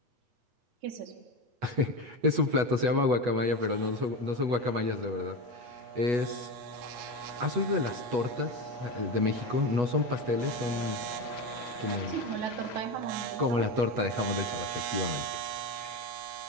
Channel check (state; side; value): late; left; 8.2 ms